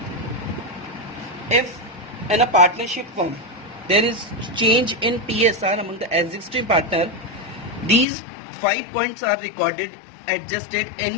if in a partnership firm there is change in PSR among the existing partner, these 5 points are recorded, adjusted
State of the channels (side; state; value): right; drops out; at 8.1 s